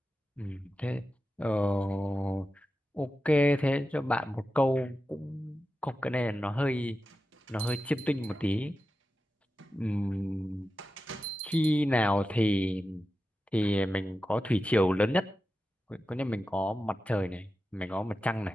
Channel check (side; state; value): both; normal; correlation 0.92